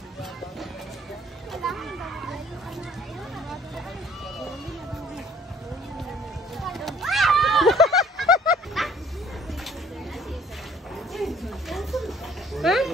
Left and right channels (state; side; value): normal; both; correlation 0.56